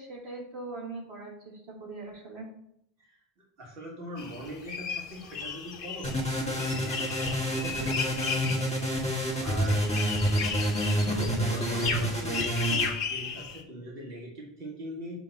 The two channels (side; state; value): both; normal; correlation 0.50